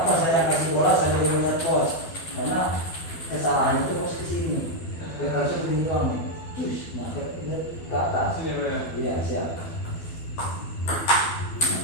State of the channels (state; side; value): late; right; 12 ms